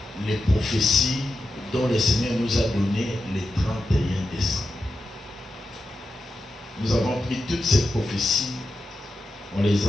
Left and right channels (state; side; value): normal; both; correlation 0.90